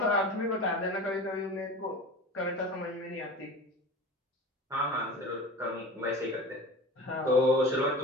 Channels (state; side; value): normal; both; correlation 0.35